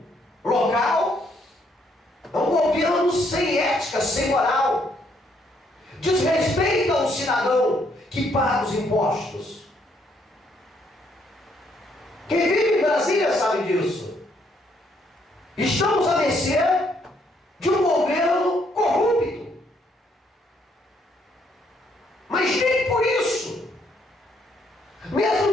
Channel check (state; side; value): normal; both; correlation 0.70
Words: local é um governo sem ética, sem moral. Desrespeita o cidadão que paga os impostos. Quem vive em Brasília sabe disso. Estamos à mercê de um governo corrupto. Mas nem por isso, mesmo